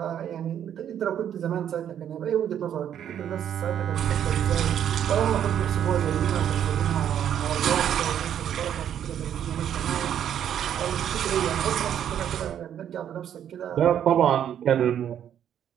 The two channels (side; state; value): left; quieter; 9.7 dB